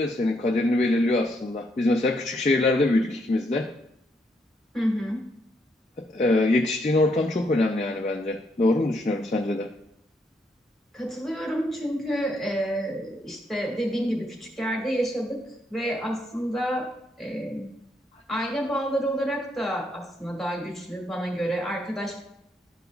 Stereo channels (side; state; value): both; normal; correlation 0.76